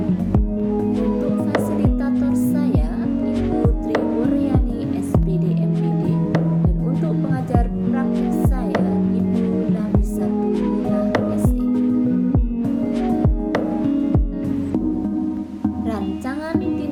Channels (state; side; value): identical; both; correlation 1.00